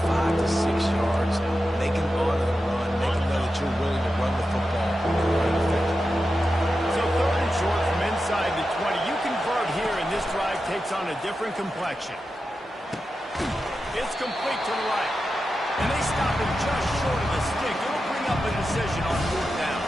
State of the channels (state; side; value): normal; both; correlation 0.90